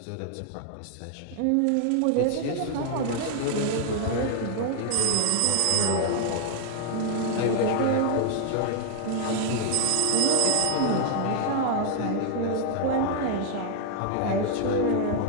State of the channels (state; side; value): different; both; correlation 0.00